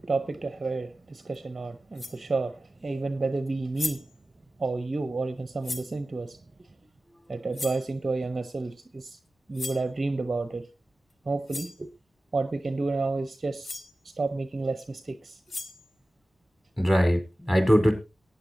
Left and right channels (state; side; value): normal; both; correlation 0.96